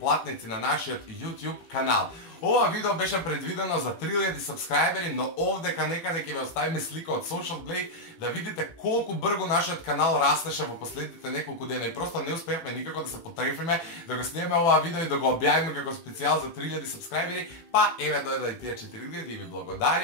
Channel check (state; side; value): late; right; 18 ms